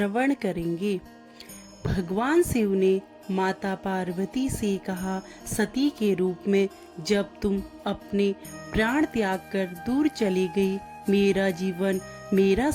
करेंगे। भगवान शिव ने माता पार्वती से कहा, सती के रूप में जब तुम अपने प्राण त्याग कर दूर चली गई, मेरा जीवन, मेरा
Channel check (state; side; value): identical; both; correlation 1.00